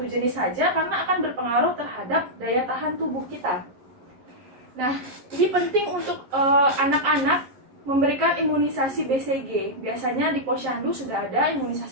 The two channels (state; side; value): late; left; 11 ms